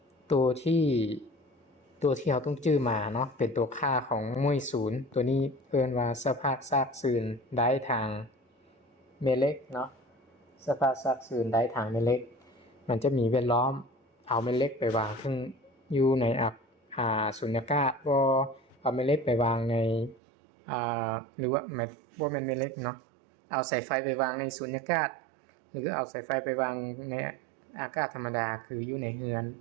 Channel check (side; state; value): left; drops out; at 20.2 s